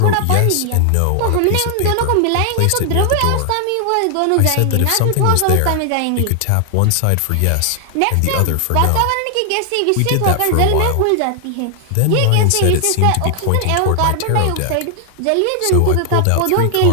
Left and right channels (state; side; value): different; both; correlation 0.00